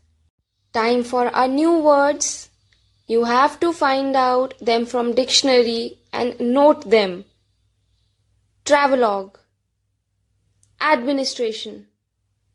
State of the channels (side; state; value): both; identical; correlation 1.00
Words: Time for our new words. You have to find out them from dictionary and note them. Travelogue, administration,